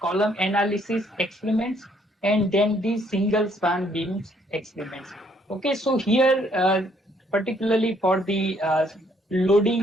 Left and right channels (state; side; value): normal; both; correlation 0.67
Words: analysis experiments, and then the single span beams experiments. Okay, so here particularly for the